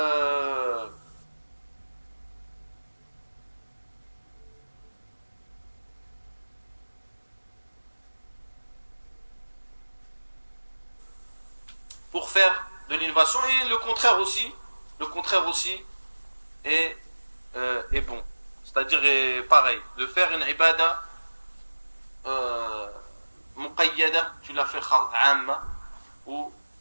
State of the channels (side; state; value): both; inverted; correlation -1.00